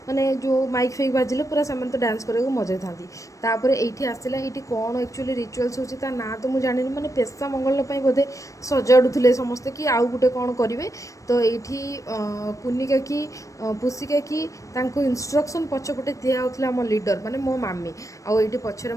ମାନେ ଯେଉଁ ମାଇକ୍ ଫାଇକ୍ ବାଜିଲେ ପୁରା ସେମାନେ ତ ଡ୍ୟାନ୍ସ କରିବାକୁ ମଜାଇଥାନ୍ତି। ତାପରେ ଏଇଠି ଆସିଲା, ଏଇଠି କ'ଣ ଆକ୍ଚୁଆଲି ରିଚୁଆଲ୍ସ ହେଉଛି ତା ନାଁ ତ ମୁଁ ଜାଣିନି, ମାନେ ପେସା ମଙ୍ଗଳ ପାଇଁ ବୋଧେ ସଜାଡ଼ୁଥିଲେ ସମସ୍ତେ କି ଆଉ ଗୋଟେ କ'ଣ କରିବେ। ତ ଏଇଠି କୁନି କାକି ପୁସି କାକି ତାଙ୍କୁ ଇନଷ୍ଟ୍ରକ୍ସନ୍ ପଛପଟେ ଦିଆହେଉଥିଲା ଆମ ଲିଡ଼ର ମାନେ ମୋ ମାମି। ଆଉ ଏଇଠି ପଛରେ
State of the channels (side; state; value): right; late; 0.16 ms